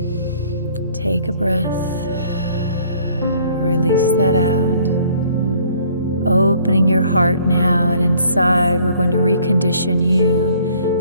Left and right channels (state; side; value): inverted; both; correlation -0.58